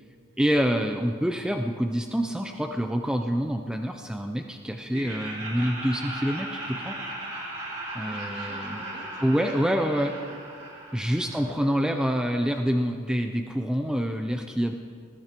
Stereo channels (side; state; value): both; normal; correlation 0.88